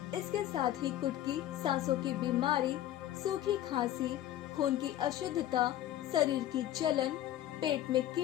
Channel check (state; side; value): quieter; right; 12.8 dB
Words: इसके साथ ही कुटकी सांसों की बीमारी, सूखी खांसी, खून की अशुद्धता, शरीर की जलन, पेट में